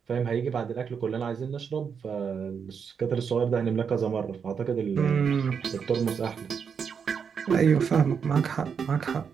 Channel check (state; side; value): quieter; left; 6.6 dB